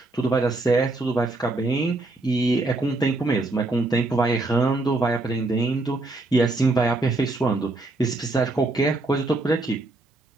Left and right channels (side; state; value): left; quieter; 3.0 dB